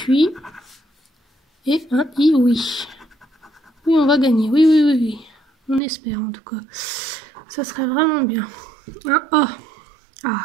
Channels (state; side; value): drops out; left; at 5.8 s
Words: Et un I, oui. Oui, on va gagner. Oui, oui, oui, oui. On espère en tout cas. Ça serait vraiment bien. Un O. Ah,